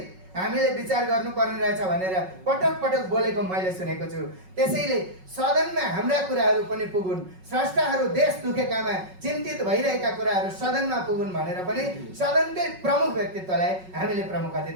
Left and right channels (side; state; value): left; late; 5.4 ms